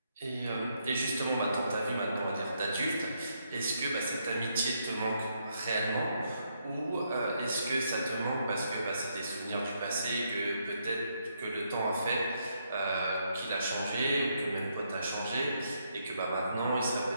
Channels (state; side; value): inverted; both; correlation -0.76